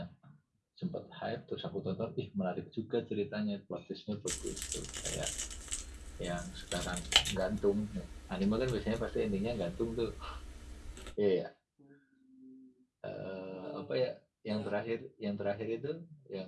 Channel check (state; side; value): identical; both; correlation 1.00